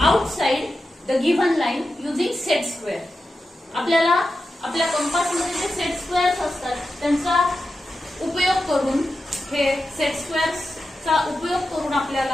outside the given line using set square. आपल्याला आपल्या कंपासमध्ये जे सेट स्क्वेअर्स असतात त्यांचा उपयोग करून, हे सेट स्क्वेअर्सचा उपयोग करून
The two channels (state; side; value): normal; both; correlation 0.91